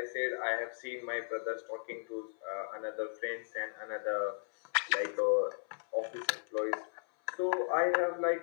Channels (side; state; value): right; silent; 54 dB below the other